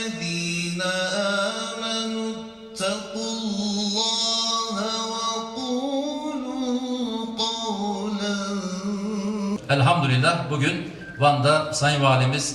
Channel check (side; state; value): both; identical; correlation 1.00